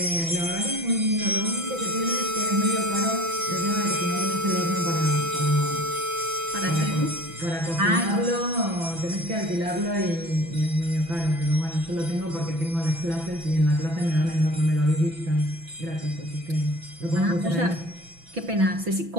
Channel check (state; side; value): late; left; 6.0 ms